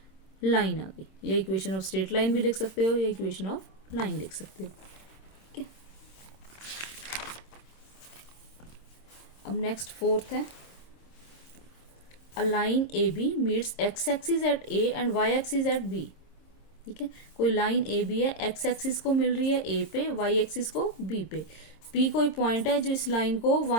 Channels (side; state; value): right; late; 26 ms